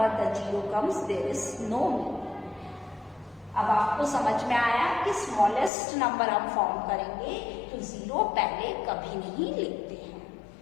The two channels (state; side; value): drops out; right; at 5.7 s